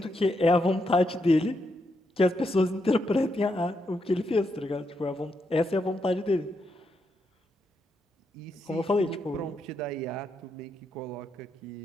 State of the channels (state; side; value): normal; both; correlation 0.81